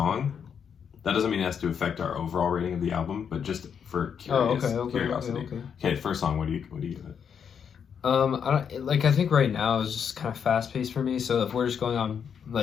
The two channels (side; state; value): right; quieter; 7.4 dB